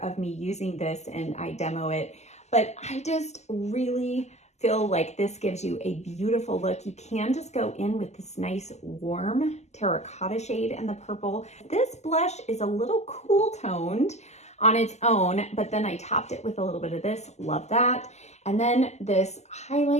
of me using this and I demo it. But I just really feel like this gives you a beautiful look. You can just go in with this nice warm terracotta shade and the purple. This blush is a little cool toned on its own, but then I topped it with a little bit of this, love that. And then this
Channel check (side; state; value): right; late; 0.33 ms